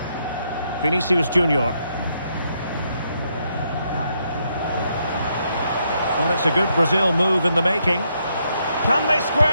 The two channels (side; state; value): both; inverted; correlation -0.77